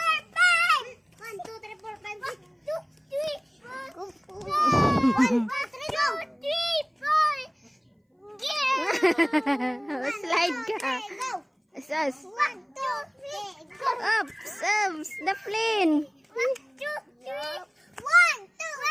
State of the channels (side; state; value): both; identical; correlation 1.00